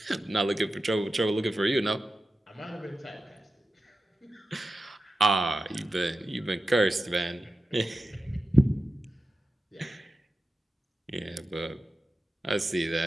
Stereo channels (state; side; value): normal; both; correlation 0.92